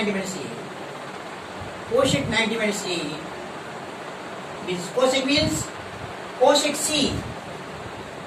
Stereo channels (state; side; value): identical; both; correlation 1.00